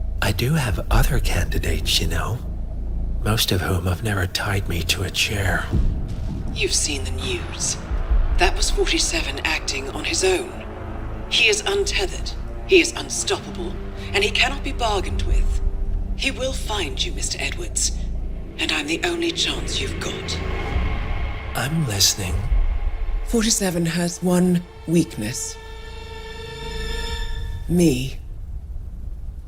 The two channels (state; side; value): identical; both; correlation 1.00